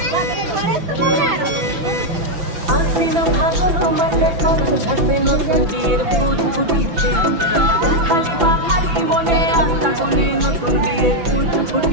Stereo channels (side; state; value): left; late; 5.9 ms